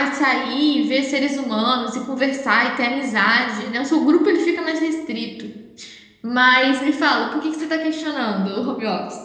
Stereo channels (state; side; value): identical; both; correlation 1.00